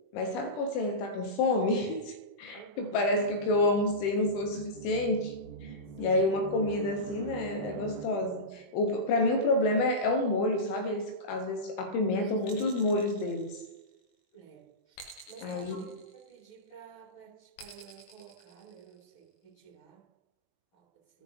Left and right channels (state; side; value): late; right; 21 ms